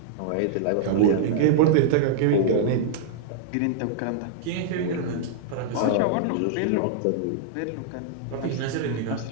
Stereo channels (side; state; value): both; different; correlation -0.01